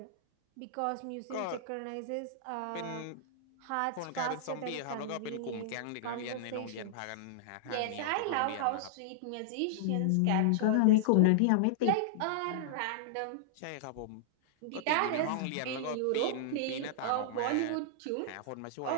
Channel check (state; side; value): different; both; correlation -0.01